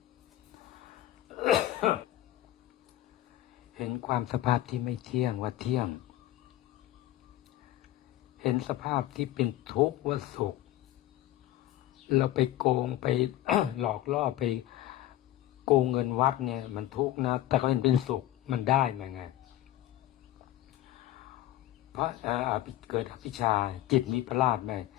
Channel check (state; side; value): quieter; right; 14.1 dB